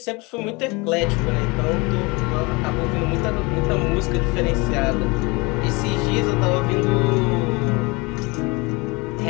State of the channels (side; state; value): right; quieter; 26.4 dB